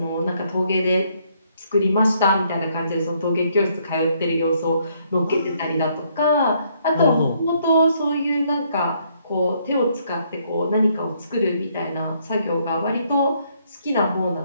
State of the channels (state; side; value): inverted; both; correlation -0.70